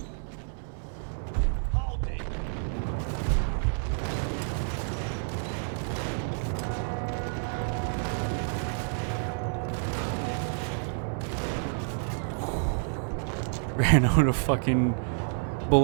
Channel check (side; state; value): left; silent; 59 dB below the other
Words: Ran out of fucking